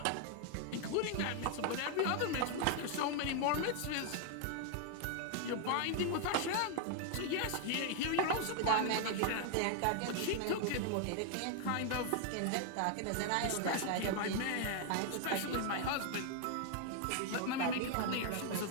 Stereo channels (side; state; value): both; different; correlation 0.00